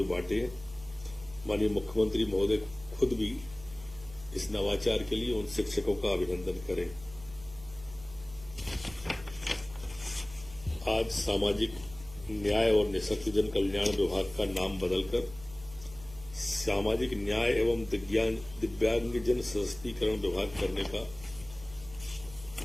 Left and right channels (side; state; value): right; noise; hum, 19 dB below the sound